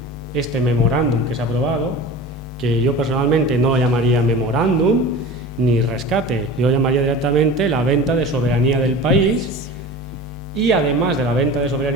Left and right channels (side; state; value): both; normal; correlation 0.35